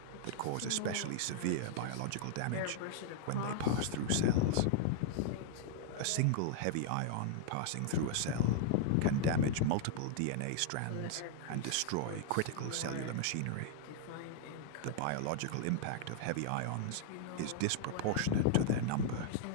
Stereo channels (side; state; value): both; different; correlation -0.01